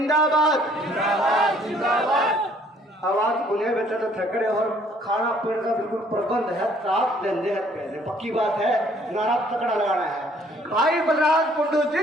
जिंदाबाद जिंदाबाद। आवाज उन्हें बेटा तो थकड़े और खाना पीने का बिल्कुल प्रबंध है, साफ धंधे है, पैसे पक्की बात है, नारा तकड़ा लगाना है। भाई बलराज कुंडू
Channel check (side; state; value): both; normal; correlation 0.61